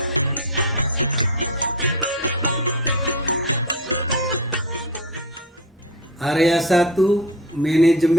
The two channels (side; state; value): both; normal; correlation 0.23